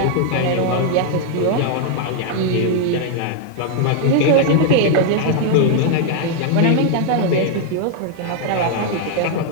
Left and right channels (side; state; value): both; different; correlation 0.00